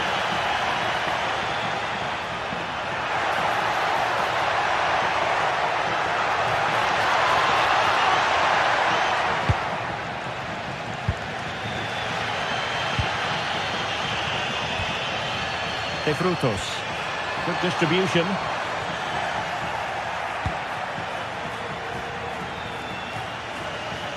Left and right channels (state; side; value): identical; both; correlation 1.00